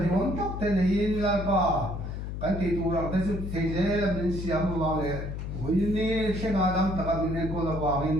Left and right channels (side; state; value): left; noise; hum, 6 dB below the sound